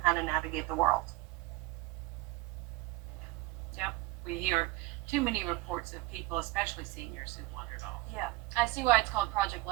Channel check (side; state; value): left; quieter; 19.2 dB